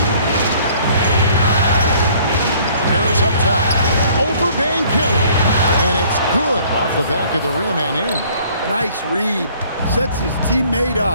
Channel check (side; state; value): both; inverted; correlation -0.57